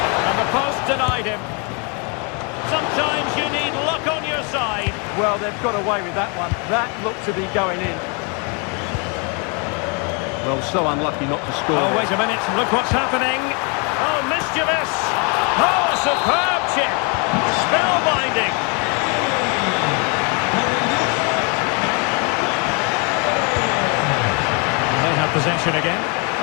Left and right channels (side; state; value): right; quieter; 34.5 dB